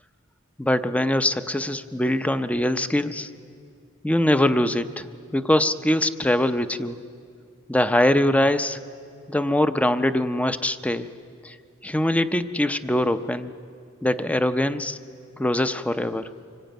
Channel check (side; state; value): both; normal; correlation 0.80